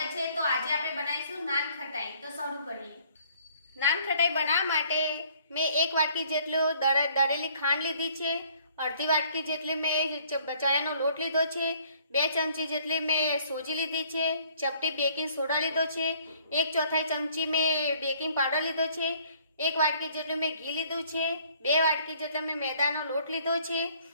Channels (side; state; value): both; inverted; correlation -0.59